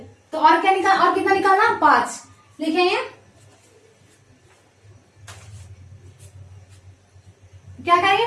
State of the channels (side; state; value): both; identical; correlation 1.00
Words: तो और क्या निकाल, और कितना निकालना 5। लिखेंगे क्या करेंगे,